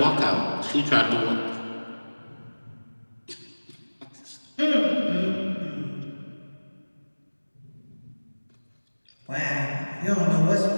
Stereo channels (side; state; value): both; inverted; correlation -1.00